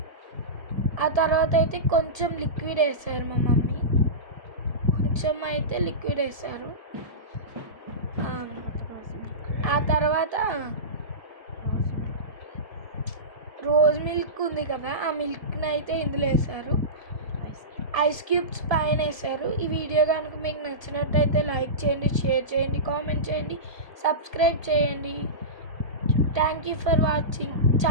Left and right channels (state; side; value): late; left; 1.3 ms